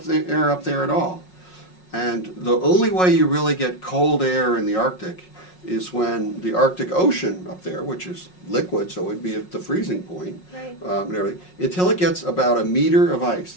air up there at all. And the only way you really get cold air in the Arctic is when the Arctic Ocean up there, which is liquid, so it'd be at the freezing point, Right. And everything, until it gets about a meter of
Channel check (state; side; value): late; right; 5.5 ms